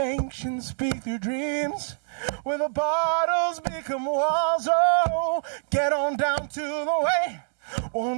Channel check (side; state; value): left; silent; digital silence